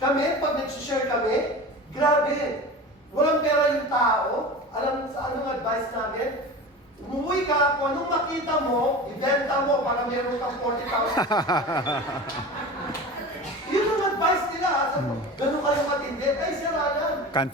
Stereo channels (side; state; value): both; normal; correlation 0.33